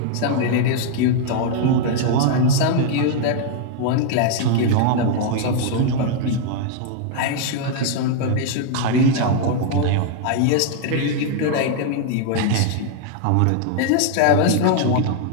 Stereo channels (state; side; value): different; both; correlation 0.00